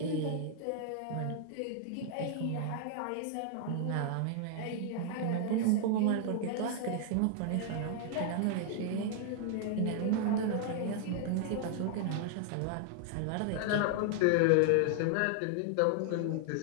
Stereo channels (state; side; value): different; both; correlation 0.00